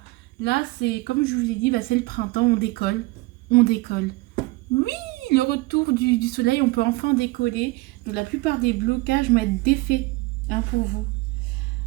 Là, c'est, comme je vous l'ai dit, bah, c'est le printemps, on décolle. On décolle. Oui, le retour du soleil, on peut enfin décoller. Donc la plupart des blocages vont être défaits, hein, pour vous.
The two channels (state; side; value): quieter; left; 22.0 dB